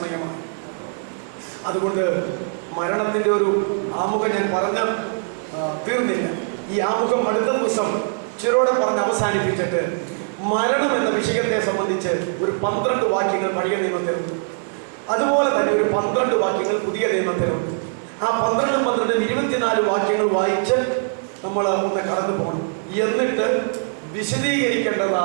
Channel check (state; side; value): silent; left; digital silence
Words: അതുകൊണ്ട് മരണത്തിന്റെ ഒരു ആമുഖം ഞാൻ പറഞ്ഞ് തീർന്നില്ല. ഈ ആമുഖം അടുത്ത ദിവസം ചിരോടെ പറഞ്ഞ് അവസാനിപ്പിച്ചിട്ട് മരണം എന്ന വിഷയത്തെ സംബന്ധിച്ച് ഒരു 12 വാക്യങ്ങൾ പഴയ നിയമത്തിലുണ്ട്. അതുപോലെ തന്നെ ഒരു 12 വാക്യങ്ങൾ പുതിയ നിയമത്തിലുണ്ട്. ആ 12 24 വാക്യങ്ങൾ വായിച്ച് നമ്മൾ ഒന്ന് കടന്നു പോകണം. എന്നിട്ട്